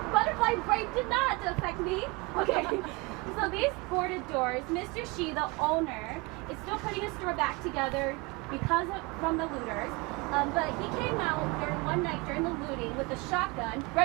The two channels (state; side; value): quieter; left; 26.2 dB